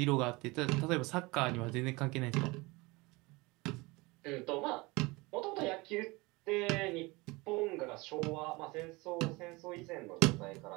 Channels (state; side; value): quieter; left; 23.9 dB